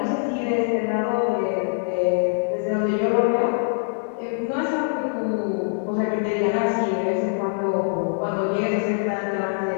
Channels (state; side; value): silent; right; 63 dB below the other